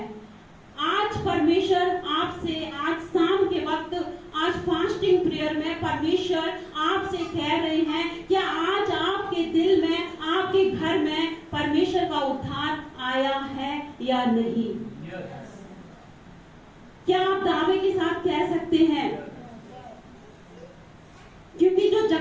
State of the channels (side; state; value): both; identical; correlation 1.00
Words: आज परमेश्वर आपसे, आज शाम के वक्त, आज फास्टिंग प्रेयर में परमेश्वर आपसे कह रहे हैं, क्या आज आपके दिल में, आपके घर में परमेश्वर का उद्धार आया है या नहीं? क्या आप दावे के साथ कह सकते हैं? क्योंकि जो